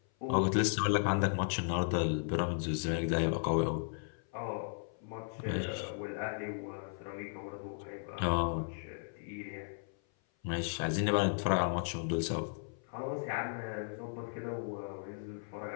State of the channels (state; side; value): silent; right; 54 dB below the other